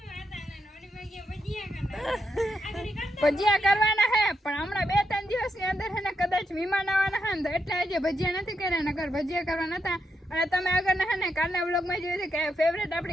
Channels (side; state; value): both; normal; correlation 0.82